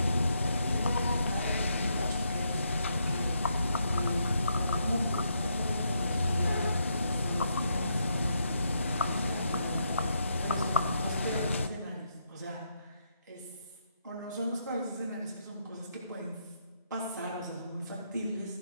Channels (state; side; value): inverted; both; correlation -0.78